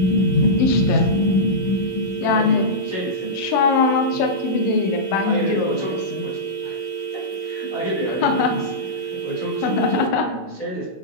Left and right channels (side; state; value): right; late; 16 ms